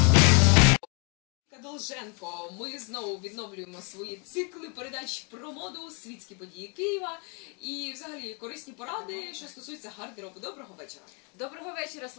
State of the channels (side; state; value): right; quieter; 35.1 dB